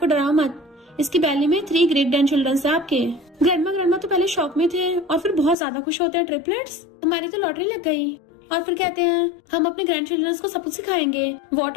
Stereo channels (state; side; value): drops out; right; at 5.6 s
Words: डराओ मत, इसकी बैली में 3 ग्रेट ग्रैंड चिल्ड्रन है आपके। ग्रैंडमा तो पहले शॉक में थे और फिर बहुत ज्यादा खुश होते हैं, ट्रिपलेट्स हमारी तो लॉटरी लग गई। और फिर कहते हैं हम अपने ग्रैंड चिल्ड्रन को सब कुछ सिखाएंगे,